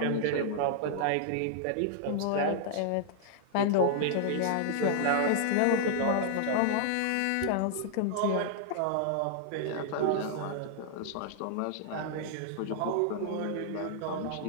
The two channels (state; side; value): different; both; correlation -0.01